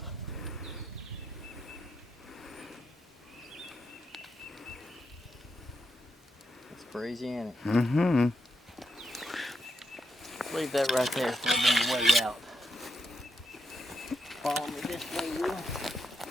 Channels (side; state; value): both; normal; correlation 0.83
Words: Crazy, ain't it? Mm-hmm. Leave that right there for the way out. Follow me this way, Will.